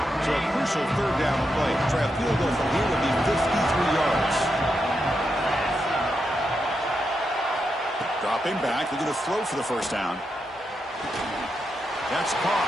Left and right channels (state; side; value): normal; both; correlation 0.85